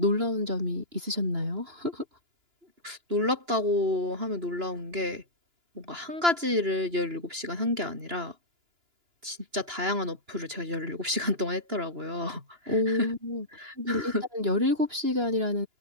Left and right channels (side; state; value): left; late; 2.9 ms